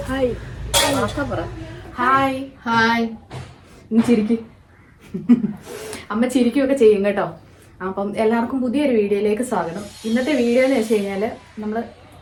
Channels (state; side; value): identical; both; correlation 1.00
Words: hi hi ഇനി ചിരിക്കും. അമ്മ ചിരിക്കുകയൊക്കെ ചെയ്യും കേട്ടോ. അപ്പം എല്ലാവർക്കും പുതിയൊരു വീഡിയോയിലേക്ക് സ്വാഗതം. ഇന്നത്തെ വീഡിയോ എന്ന് വെച്ച് കഴിഞ്ഞാൽ നമ്മൾ